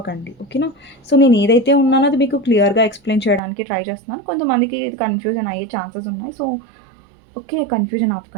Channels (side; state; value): left; drops out; at 3.4 s